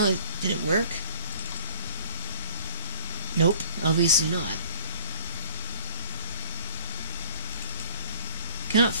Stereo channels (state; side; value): inverted; both; correlation -0.48